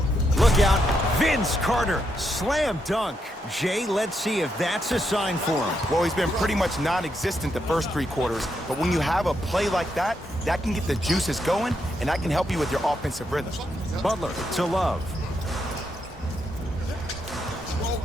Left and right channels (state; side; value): normal; both; correlation 0.80